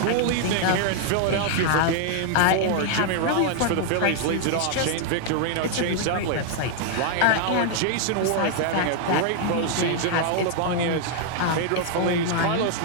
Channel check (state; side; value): different; both; correlation 0.00